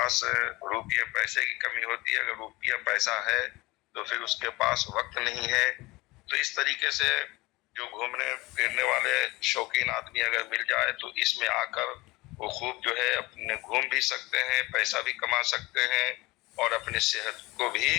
रुपये पैसे की कमी होती है। अगर रुपया पैसा है तो फिर उसके पास वक्त नहीं है। तो इस तरीके से जो घूमने फिरने वाले शौकीन आदमी अगर मिल जाए तो इसमें आकर वो खूब जो है अपने घूम भी सकते हैं, पैसा भी कमा सकते हैं और अपनी सेहत को भी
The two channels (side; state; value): right; quieter; 21.7 dB